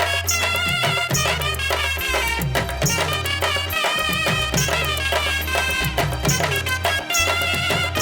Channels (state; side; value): identical; both; correlation 1.00